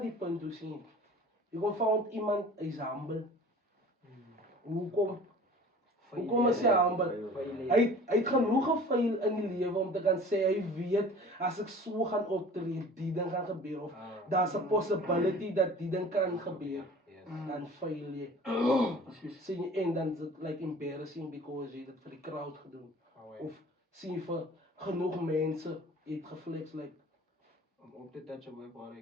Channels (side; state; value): both; normal; correlation 0.45